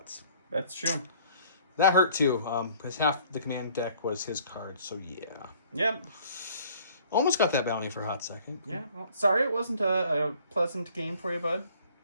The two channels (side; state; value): both; inverted; correlation -0.56